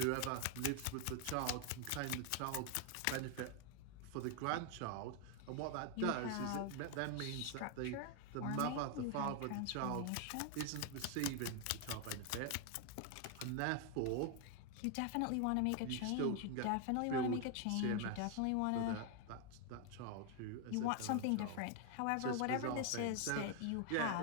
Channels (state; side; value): different; both; correlation 0.00